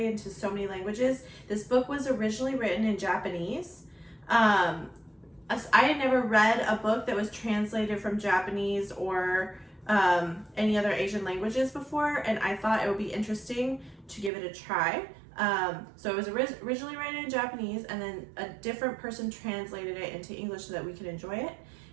into so many languages. This book was originally written in Japanese. I had never read a book that was translated from Japanese or any other Asian languages before, and I thought it would be interesting to give it a try. So it was originally written in Japanese, and then a different person translated it into English so that we could enjoy it.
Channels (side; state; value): left; drops out; at 14.3 s